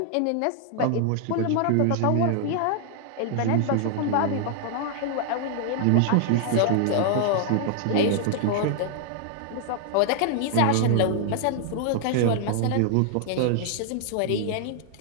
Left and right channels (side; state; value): both; different; correlation 0.00